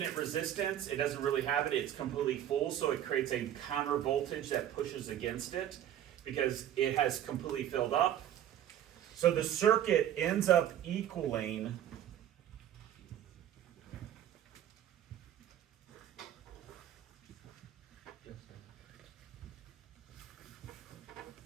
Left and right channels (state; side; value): quieter; left; 11.1 dB